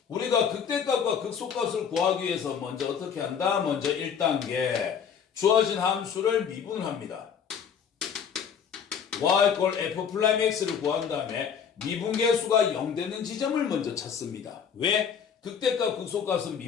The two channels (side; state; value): right; quieter; 7.4 dB